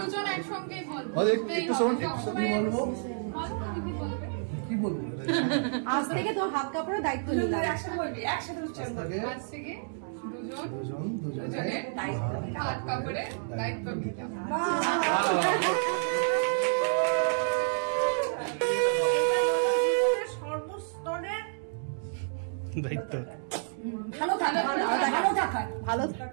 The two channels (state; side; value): silent; left; digital silence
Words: দুজন একসঙ্গে বলবো, একটু শোন, বলবো কি বলবো। আজ থেকে তোর হাত কাপড়ের দায়িত্ব নিলাম। একসাথে বলবি, একসাথে আজ থেকে দুজনের দায়িত্ব, হাত কাপড়ের দায়িত্ব নিলাম। সর্বস্তরের দায়িত্ব,